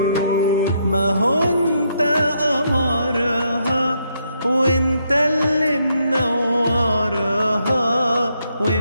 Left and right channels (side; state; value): both; inverted; correlation -0.76